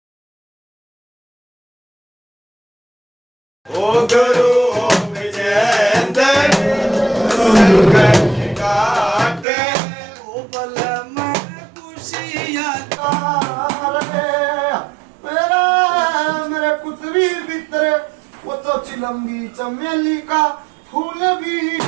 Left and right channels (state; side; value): drops out; left; at 9.5 s